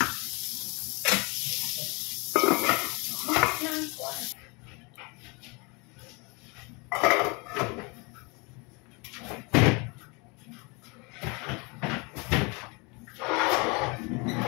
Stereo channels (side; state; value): right; quieter; 29.4 dB